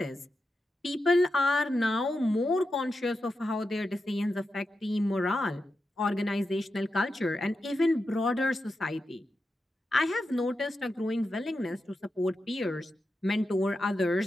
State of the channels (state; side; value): normal; both; correlation 0.89